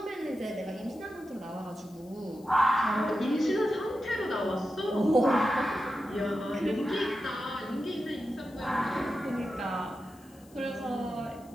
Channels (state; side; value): noise; left; hiss, 27 dB below the sound